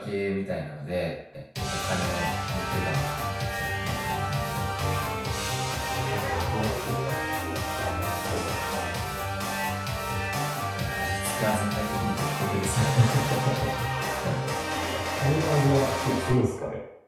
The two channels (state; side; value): identical; both; correlation 1.00